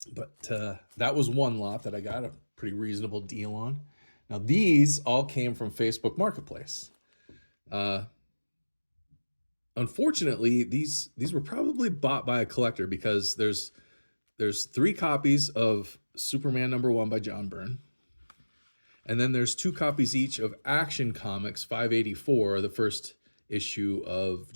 But that was one lot that I got a pretty reasonable deal on. Now these all came from Facebook Marketplace. Unfortunately, these were probably bought by a collector because there's 3 copies of Superman #1 by John Byrne. And then there's 2 copies each of Action Comics 584, the first issue of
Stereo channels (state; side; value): inverted; both; correlation -1.00